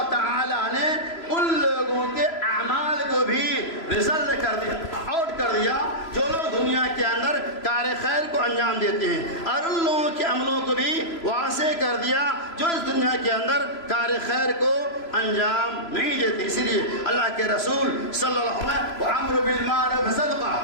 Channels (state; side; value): late; right; 3.0 ms